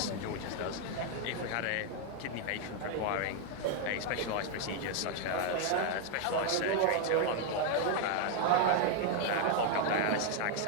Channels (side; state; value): both; different; correlation 0.00